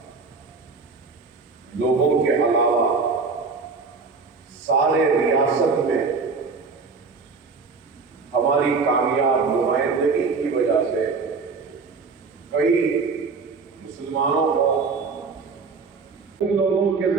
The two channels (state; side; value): quieter; left; 4.6 dB